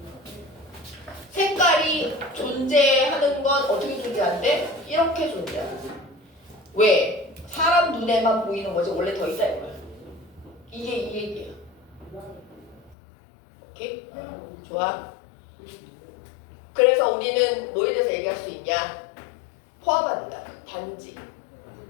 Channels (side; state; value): right; drops out; at 13.0 s